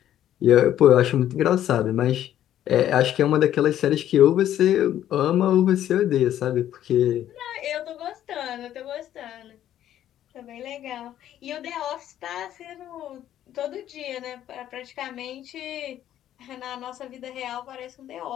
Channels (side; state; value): right; quieter; 11.6 dB